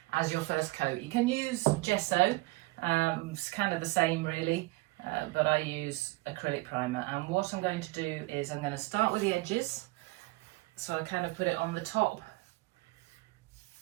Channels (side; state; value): left; quieter; 22.5 dB